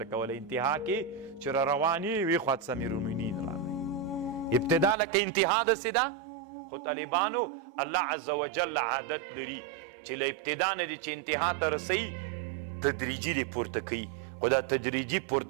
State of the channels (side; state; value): left; drops out; at 5.0 s